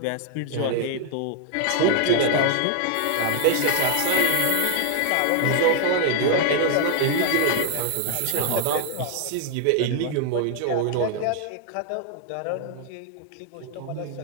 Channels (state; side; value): different; both; correlation 0.00